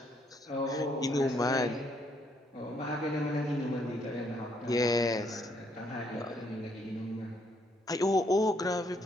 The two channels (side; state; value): both; normal; correlation 0.71